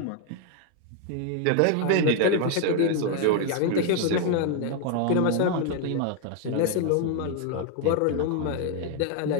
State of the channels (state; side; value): different; both; correlation 0.01